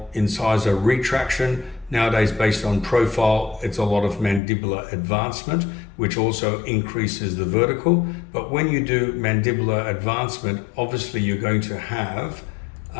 incisor retraction. Nowadays, based on profile, it's a lot of mandibular advancement, which also increases the vertical. But when you do mandibular advancement, obviously you're going to have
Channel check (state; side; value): drops out; right; at 4.4 s